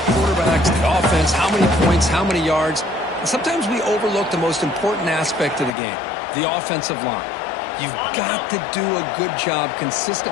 quarterbacks, the offense, how many points, how many yards. And sometimes we overlook the most important aspect of the game, the offensive line. You've got to do a good job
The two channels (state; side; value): drops out; right; at 5.8 s